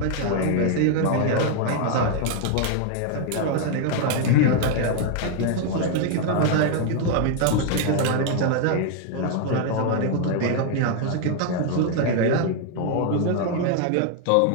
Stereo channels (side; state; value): both; different; correlation 0.00